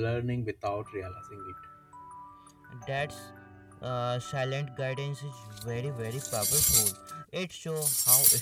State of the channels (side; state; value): both; identical; correlation 1.00